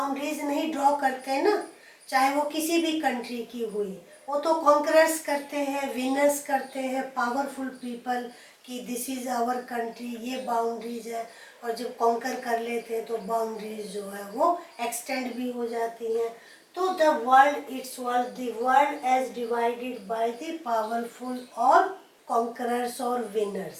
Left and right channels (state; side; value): identical; both; correlation 1.00